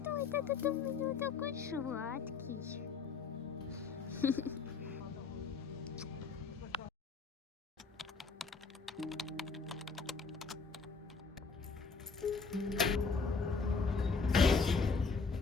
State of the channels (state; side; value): quieter; right; 4.9 dB